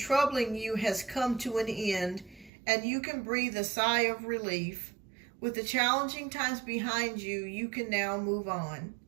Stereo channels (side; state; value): left; drops out; at 2.5 s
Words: you has come to an end, and you can breathe a sigh of relief. With the challenging times behind you, you can now move on.